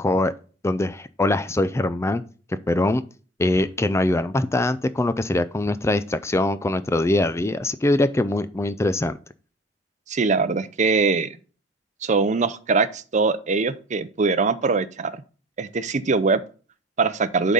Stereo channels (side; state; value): both; normal; correlation 0.46